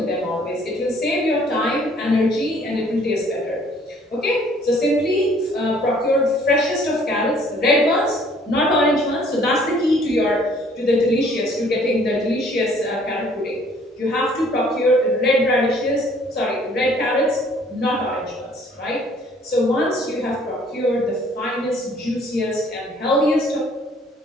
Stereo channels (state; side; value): normal; both; correlation 0.59